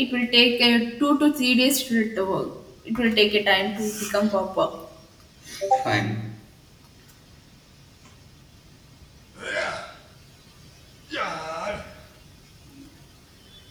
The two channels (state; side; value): identical; both; correlation 1.00